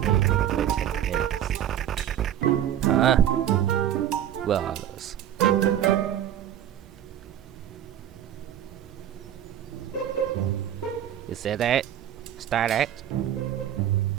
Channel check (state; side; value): quieter; left; 10.8 dB